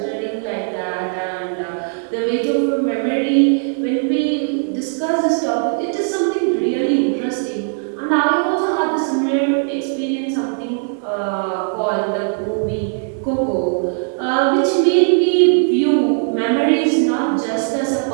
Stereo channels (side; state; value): left; silent; 61 dB below the other